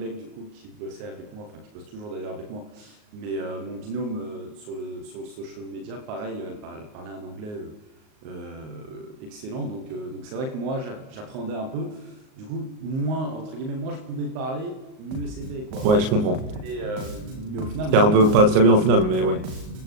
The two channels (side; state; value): left; late; 38 ms